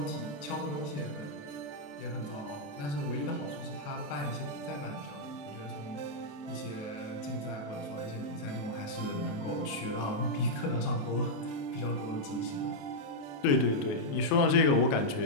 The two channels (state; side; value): late; right; 28 ms